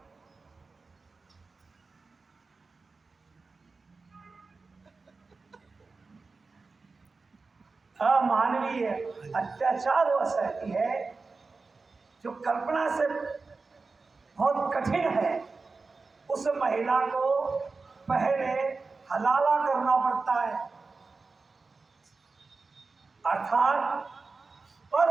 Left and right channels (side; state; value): left; quieter; 4.1 dB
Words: अमानवीय अत्याचार वह सहती है जो कल्पना से बहुत कठिन है। उस महिला को पहले हलाला करना पड़ता है, अर्थात